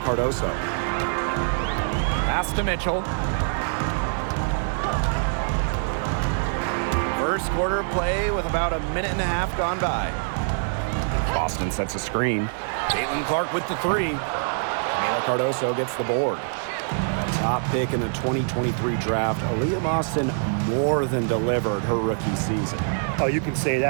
Pass to Mitchell. First quarter of play with about a minute and a half gone by. Boston sets a screen. Caitlin Clark with the 3. Camila Cardoso gets the board. Top pick in the 2023 draft, Aaliyah Boston more than delivered her rookie season. Oh, you can say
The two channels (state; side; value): silent; left; digital silence